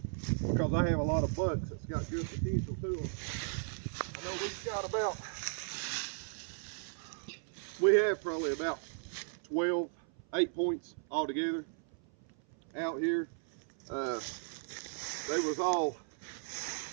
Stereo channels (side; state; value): left; silent; 54 dB below the other